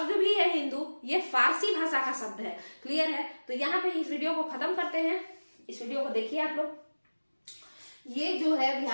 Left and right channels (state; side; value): inverted; both; correlation -1.00